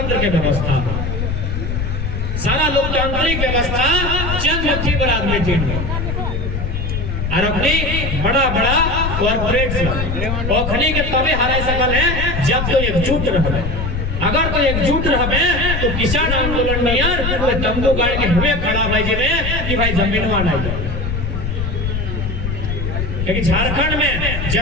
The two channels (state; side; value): noise; left; rumble, 2 dB below the sound